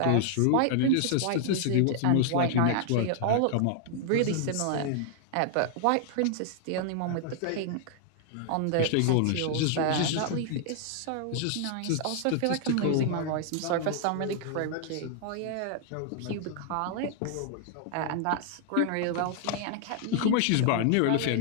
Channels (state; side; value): different; both; correlation 0.00